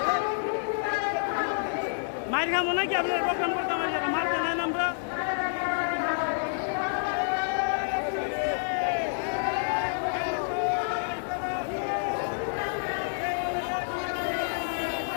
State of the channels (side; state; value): right; silent; digital silence